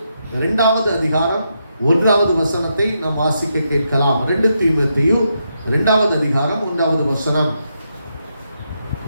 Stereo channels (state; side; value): inverted; both; correlation -0.82